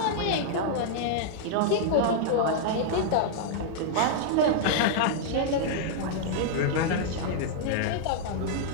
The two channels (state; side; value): different; both; correlation -0.01